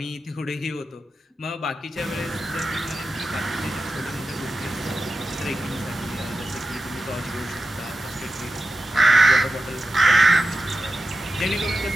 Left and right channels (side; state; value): both; normal; correlation 0.92